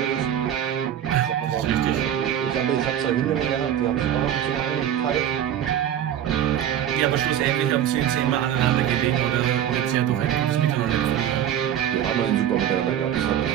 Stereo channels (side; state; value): left; quieter; 10.4 dB